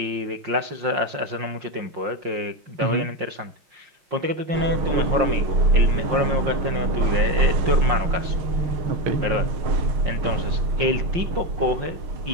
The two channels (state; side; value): late; left; 5.6 ms